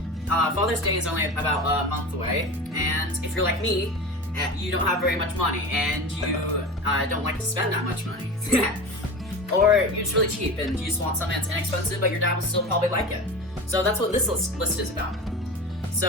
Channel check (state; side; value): normal; both; correlation 0.30